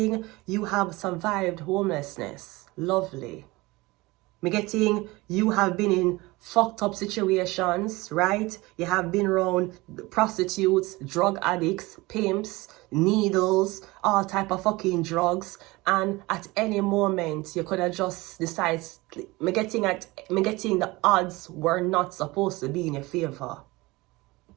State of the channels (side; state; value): left; quieter; 21.9 dB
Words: you have survived homelessness. Lovely. I'm getting you have been in fucked up situations, right? You have been around prostitutes, drug addicts, pimps, needles, all type of fucking drugs. And at any moment, you could have just decided, I'm getting the odds were not supposed to be in your favor.